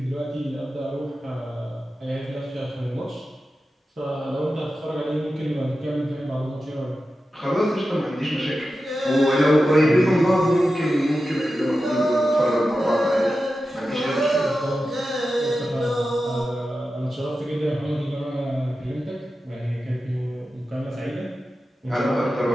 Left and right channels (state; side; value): normal; both; correlation 0.92